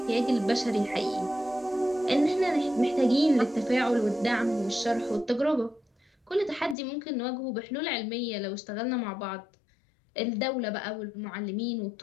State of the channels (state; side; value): drops out; right; at 6.8 s